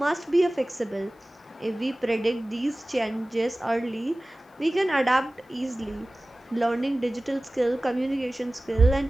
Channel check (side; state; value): both; normal; correlation 0.98